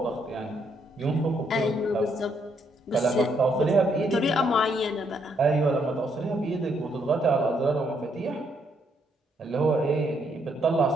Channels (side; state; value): both; normal; correlation 0.73